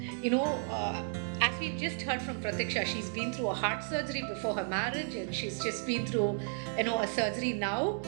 As we've just heard from Pratiksha, she's been through a heart surgery before her marriage, and she's just been through, a surgery now,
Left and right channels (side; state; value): left; silent; 56 dB below the other